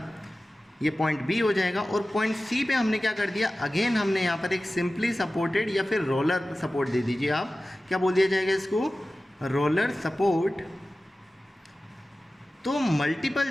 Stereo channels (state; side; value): normal; both; correlation 0.96